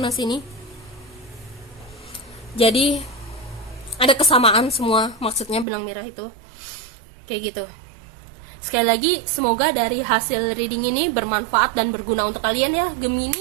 sini. Jadi ada kesamaan semua, maksudnya benang merah itu kayak gitu. Sekali lagi, semoga dari hasil reading ini bermanfaat dan berguna untuk kalian ya,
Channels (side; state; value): left; drops out; at 5.7 s